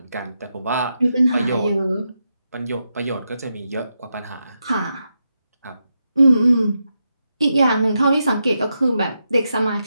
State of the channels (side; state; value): both; inverted; correlation -0.86